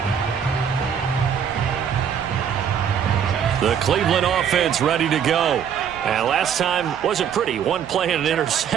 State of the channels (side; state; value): left; quieter; 8.1 dB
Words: The Cleveland offense ready to go. And last time wasn't pretty. One play and an